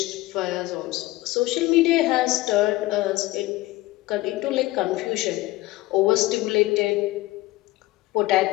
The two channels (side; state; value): right; quieter; 18.7 dB